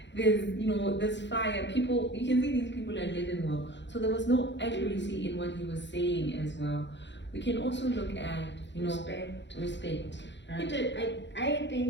There's, you know, there's fire. People, you can see these people are living well. So there was no accuracy in what he was saying as well. We can also look at, you know, respect. He Right? did, I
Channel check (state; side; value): late; right; 0.52 ms